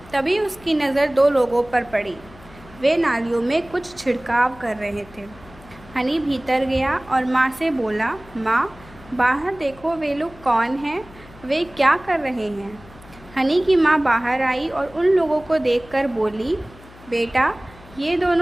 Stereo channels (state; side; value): noise; left; hum, 22 dB below the sound